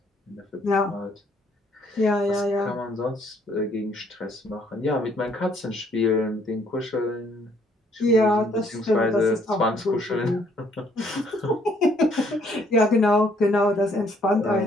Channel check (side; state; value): both; normal; correlation 0.65